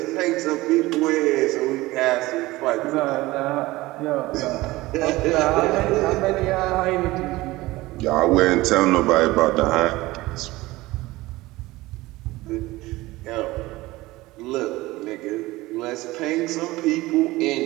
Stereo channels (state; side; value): quieter; left; 19.3 dB